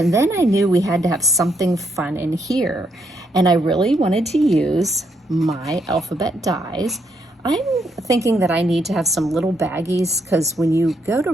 then I knew we had to have something fun in here. And I really wanted to use my alphabet dies. I'm thinking that I need to have some little baggies because when you go to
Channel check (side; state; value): both; normal; correlation 0.76